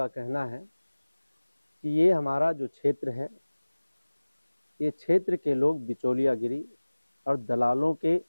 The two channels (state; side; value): inverted; both; correlation -1.00